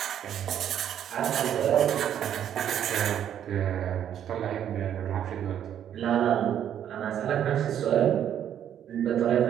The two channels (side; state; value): left; quieter; 9.9 dB